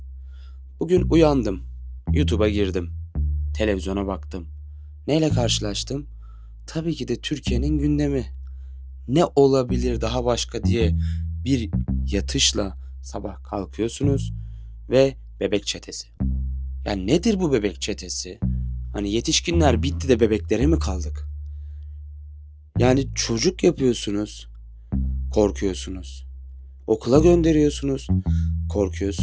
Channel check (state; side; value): identical; both; correlation 1.00